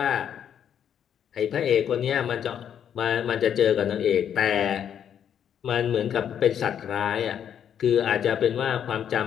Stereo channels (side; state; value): right; quieter; 9.0 dB